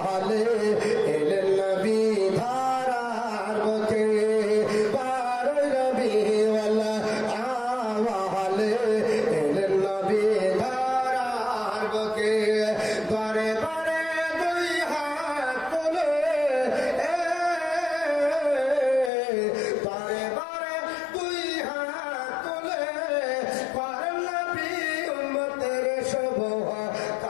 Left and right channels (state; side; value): drops out; right; at 19.1 s